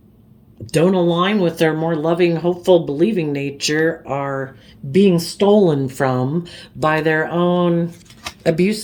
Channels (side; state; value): both; identical; correlation 1.00